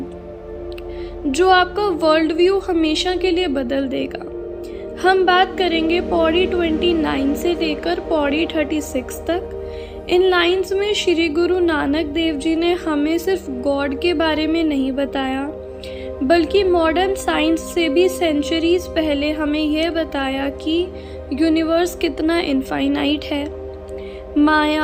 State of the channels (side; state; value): both; identical; correlation 1.00